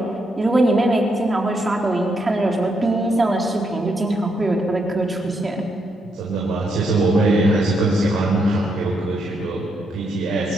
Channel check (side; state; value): both; normal; correlation 0.78